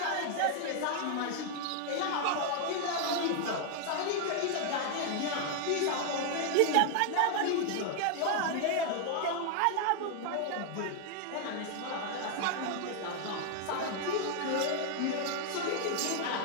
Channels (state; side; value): different; both; correlation 0.00